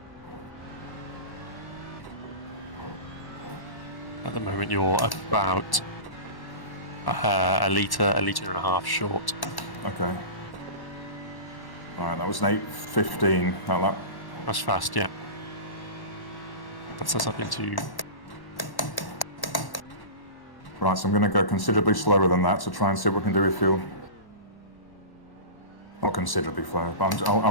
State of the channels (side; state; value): right; late; 1.1 ms